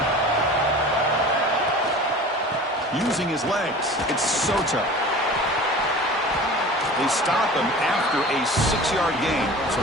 Using his legs. It's Soto. They stop him after a 6-yard gain, so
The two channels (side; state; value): both; normal; correlation 0.39